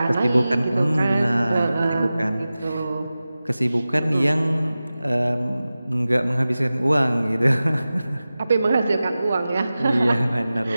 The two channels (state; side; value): inverted; both; correlation -0.95